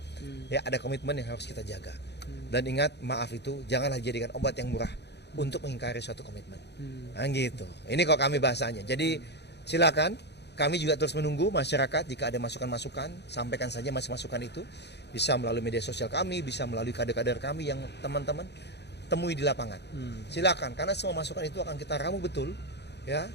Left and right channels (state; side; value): late; right; 0.49 ms